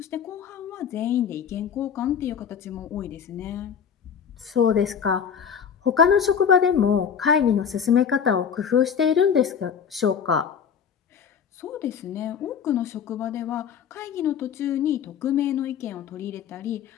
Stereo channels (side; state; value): right; quieter; 7.4 dB